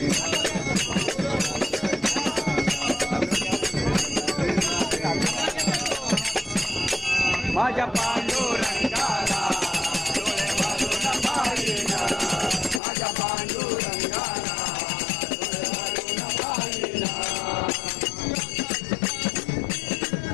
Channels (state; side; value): drops out; right; at 12.8 s